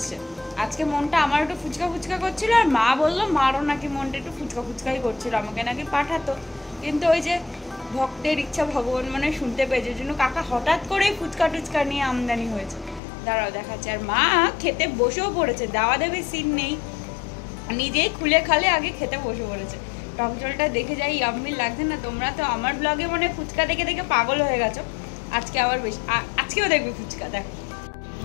আজকে মনটা আমার একটু ফুচকা ফুচকা করছিল, আর মা বললো মারও নাকি মনটা একটু ফুচকা ফুচকাই করছিল, আমাকে নাকি পাঠাতো। কিন্তু ওই যে ভক্তের ইচ্ছা ভগবান মানে শুনতে পেয়েছে, জন্য কাকা হঠাৎ করেই ফুচকা টুচকা নিয়ে আমদানি হয়েছে। দাঁড়াও দেখাচ্ছে। আর মা খেতে বসেও পড়েছে, দাওয়া দেবে সিন নেই, নিজেই খুলে খালে আগে খেতে বসে পড়েছে। টক জলটা দেখে যাই ইয়াম্মি লাগছে না? তোমরা তো আমার ব্লগে মানে ফুচকা দেখে দেখে পাগল হয়ে গেছো। আজকে আবার বেশি, আজকেও দেখবে ফুচকা। দেখো,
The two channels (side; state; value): right; drops out; at 13.0 s